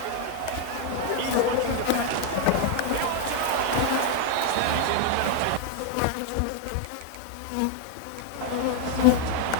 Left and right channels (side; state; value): both; different; correlation 0.00